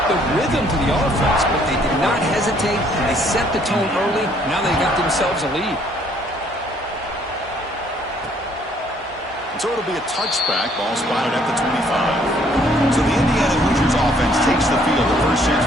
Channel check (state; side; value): normal; both; correlation 0.63